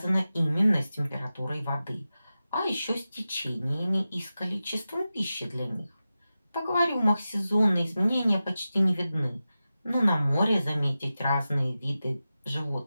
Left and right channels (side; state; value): both; inverted; correlation -0.93